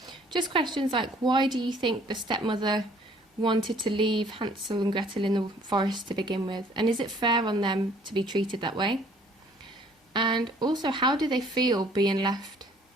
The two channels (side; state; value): both; normal; correlation 0.58